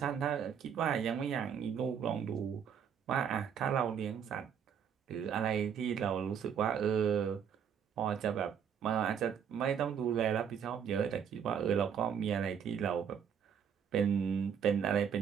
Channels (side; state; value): left; quieter; 7.8 dB